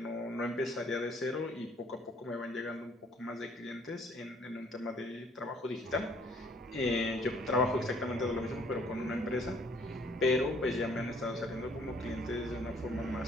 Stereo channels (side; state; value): both; normal; correlation 0.61